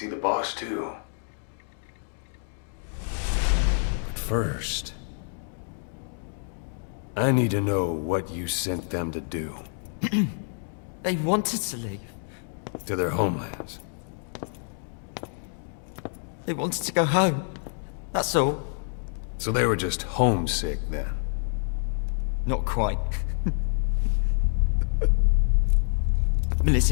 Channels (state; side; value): silent; right; 60 dB below the other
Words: the boss, too. But first, I need to know what you sent them to do. They wanted to leave. To their homelands. They wanted to go home. That's all. So they were just homesick, then? Not quite.